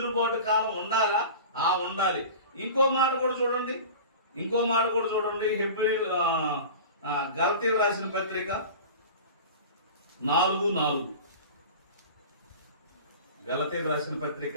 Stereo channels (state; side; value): inverted; both; correlation -0.35